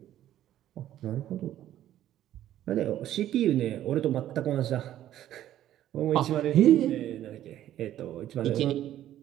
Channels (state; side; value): quieter; left; 12.4 dB